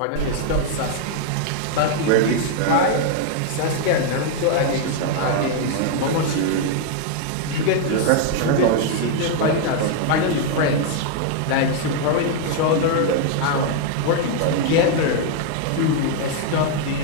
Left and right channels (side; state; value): both; different; correlation 0.00